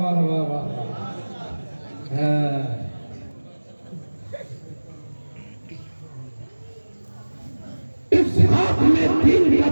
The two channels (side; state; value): both; inverted; correlation -1.00